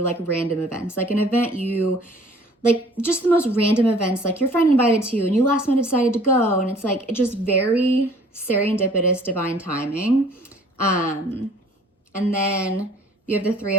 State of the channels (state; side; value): normal; both; correlation 0.53